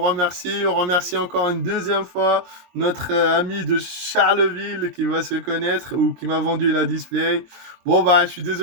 remercie. On remercie encore une deuxième fois notre ami de Charleville qui va se connaître ou qui m'a vendu la display. Bon, bah, je suis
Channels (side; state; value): left; late; 22 ms